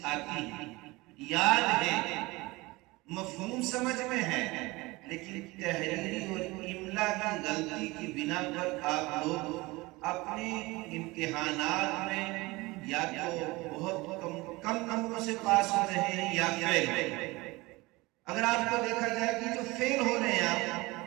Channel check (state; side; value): quieter; left; 22.2 dB